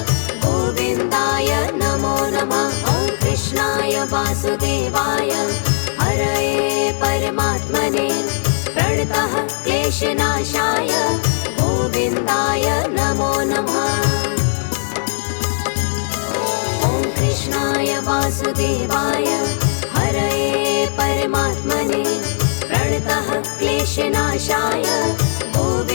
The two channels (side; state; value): right; silent; digital silence